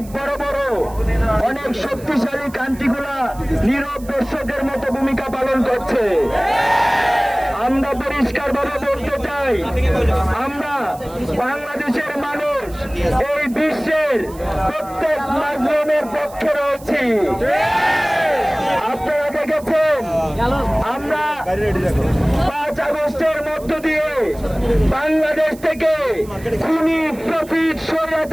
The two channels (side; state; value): right; noise; hiss, 22 dB below the sound